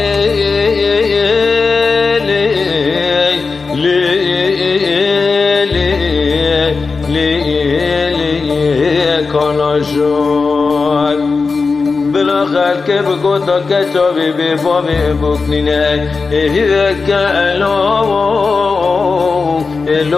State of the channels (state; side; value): quieter; right; 4.4 dB